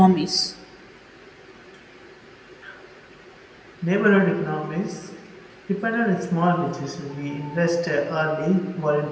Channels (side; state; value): both; identical; correlation 1.00